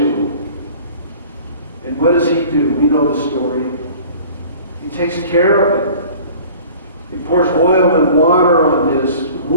And what does he do? We know the story. He takes care of him. He pours oil and water on his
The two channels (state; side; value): inverted; both; correlation -0.46